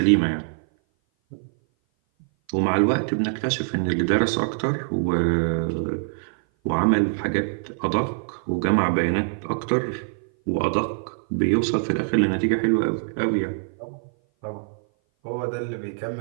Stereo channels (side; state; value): left; silent; 57 dB below the other